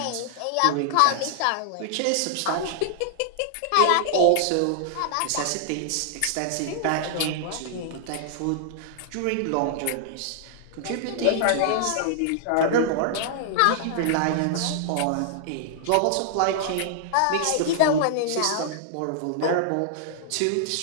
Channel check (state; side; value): different; both; correlation -0.01